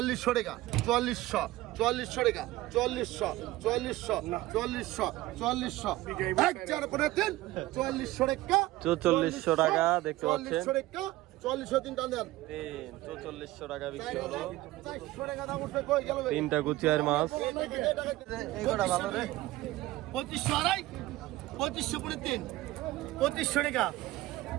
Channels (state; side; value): quieter; left; 17.6 dB